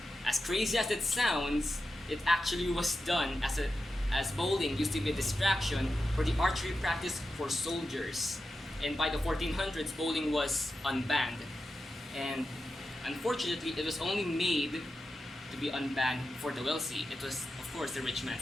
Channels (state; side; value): normal; both; correlation 0.91